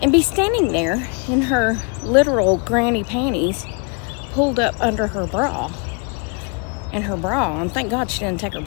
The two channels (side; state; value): right; quieter; 35.2 dB